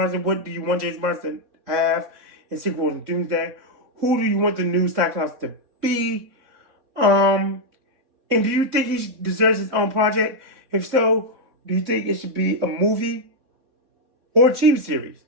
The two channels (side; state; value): left; late; 4.1 ms